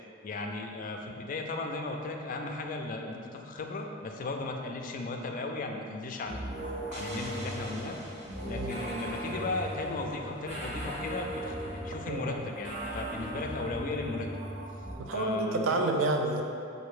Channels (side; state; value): both; normal; correlation 0.19